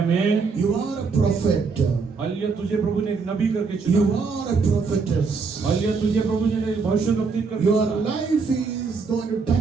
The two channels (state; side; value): quieter; left; 4.8 dB